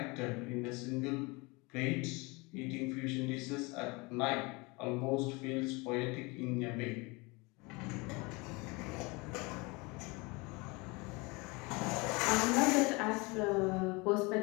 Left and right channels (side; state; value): right; quieter; 26.4 dB